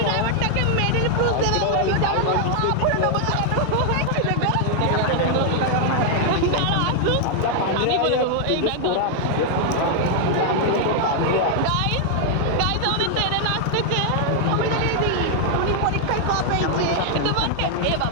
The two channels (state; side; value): different; both; correlation 0.00